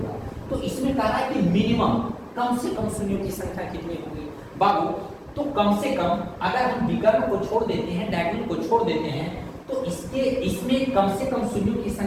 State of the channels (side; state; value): both; identical; correlation 1.00